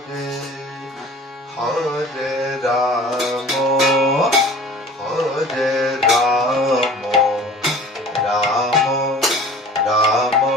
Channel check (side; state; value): both; normal; correlation 0.44